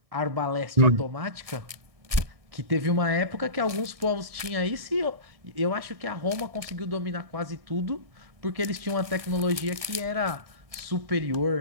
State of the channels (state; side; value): late; left; 1.6 ms